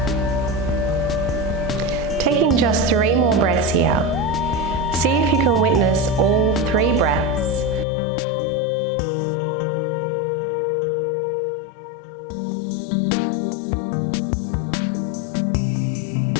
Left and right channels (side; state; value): right; drops out; at 7.9 s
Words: Taking just 3 more breaths here. See if you can witness all 3 breaths without the mind chatter distracting you.